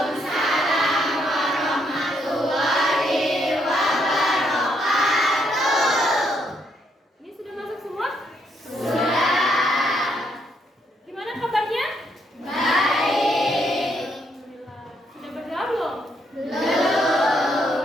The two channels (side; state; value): both; normal; correlation 0.74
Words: warahmatullahi wabarakatuh. Ini sudah masuk semua? Sudah. Gimana kabarnya? Baik. Alhamdulillah. Sudah berdoa belum?